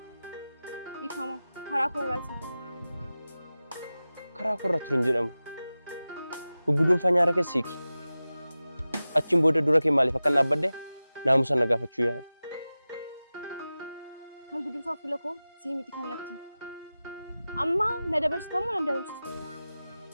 Ifama karaa korraati. Karaa korra turin jedhamu. Gugguduunfaa nyaara keessiiki. Achiin booda dura kee maaliif akka naabbadde naamusa na gaafachuu yaada. Kan gudunfaa fuula koo sii miti kan natti. Amma na dabarstamu na dabarstu.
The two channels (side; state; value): both; inverted; correlation -0.96